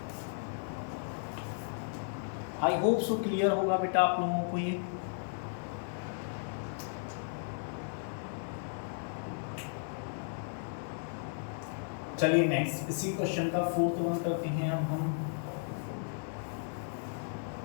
आई होप सो क्लियर होगा बेटा आप लोगों को ये। चलिए नेक्स्ट इसी क्वेश्चन का 4th वन करते हैं अब हम।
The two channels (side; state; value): right; silent; digital silence